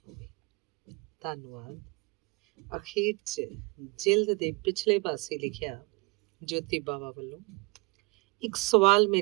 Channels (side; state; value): left; quieter; 26.7 dB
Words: ਹੋਵੇ। ਧੰਨਵਾਦ। ਅਖੀਰ 'ਚ ਜਿਲਦ ਦੇ ਪਿਛਲੇ ਪਾਸੇ ਲਿਖਿਆ ਜੋਤੀ ਬਾਵਾ ਵੱਲੋਂ ਇੱਕ ਸਵਾਲ